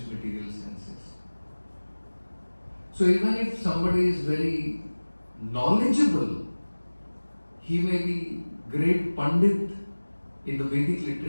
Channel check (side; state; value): both; inverted; correlation -1.00